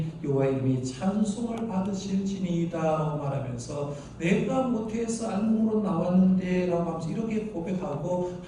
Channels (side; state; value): both; identical; correlation 1.00